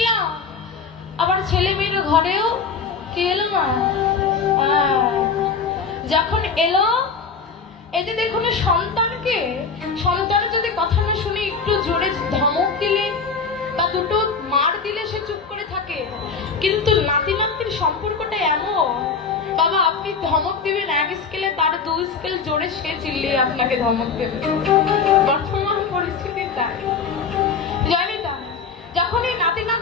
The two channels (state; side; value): quieter; right; 5.3 dB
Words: আবার ছেলে মেয়ের ঘরেও কি এলো মা? যখন এলো, এই যে দেখুন সন্তানকে, সন্তানের যদি কথা না শুনে একটু জোরে ধমক দিলে বা দুটো মার দিলে সে চুপ করে থাকে, কিন্তু নাতি নাতির সম্পর্কটা এমন, বাবা আপনি ধমক দিবেন এক স্কেলে, তার 2 স্কেল জোরে সে চিল্লিয়ে আপনাকে ধমক দেবে। বর্তমান পরিস্থিতি তাই, জানি তা। যখন এই নাতি